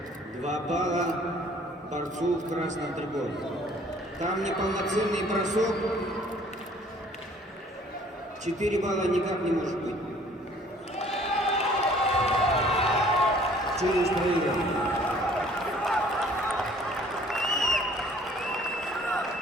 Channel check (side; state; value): both; normal; correlation 0.55